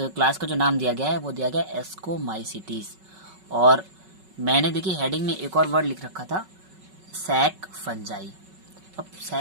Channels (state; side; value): late; left; 5.3 ms